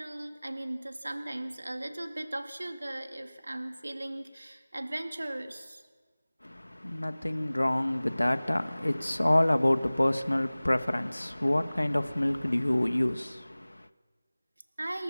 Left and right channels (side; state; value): both; inverted; correlation -0.99